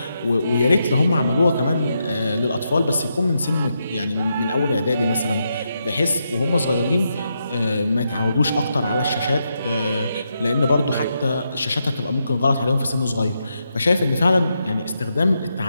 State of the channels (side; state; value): both; inverted; correlation -0.83